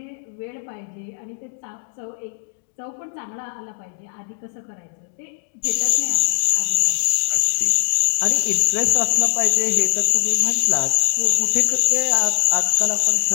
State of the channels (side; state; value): right; silent; digital silence